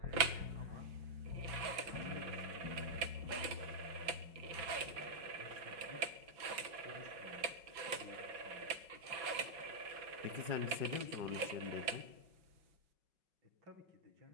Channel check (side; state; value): left; late; 5.4 ms